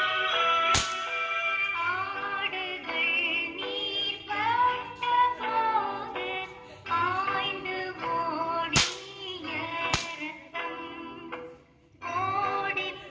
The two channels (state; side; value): identical; both; correlation 1.00